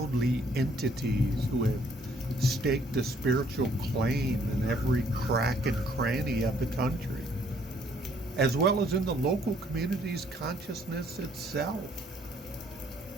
entities who have staked a spiritual claim in every crack and cranny of the country, as well as in the local community's consciousness itself.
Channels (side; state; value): both; normal; correlation 0.64